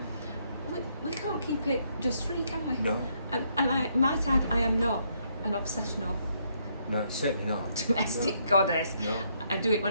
we can't keep it dust free, can we? No. And I might add, I am not an obsessional No, certainly not. domestic goddess. No. I do it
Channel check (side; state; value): both; inverted; correlation -0.73